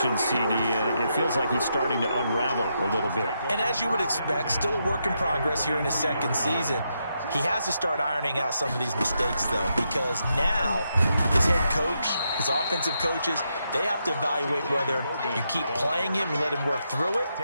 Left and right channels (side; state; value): both; inverted; correlation -0.82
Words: CD. It feels like he's starting to unravel a little bit. And as you would expect, still a work in progress here in his second season. He has to start ironing out some of these mistakes, though, because now his head coach, his offensive coaches, they have to evaluate whether you keep playing him and let him work through it,